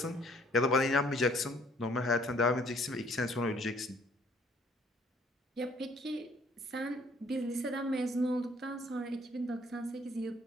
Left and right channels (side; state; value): both; normal; correlation 0.61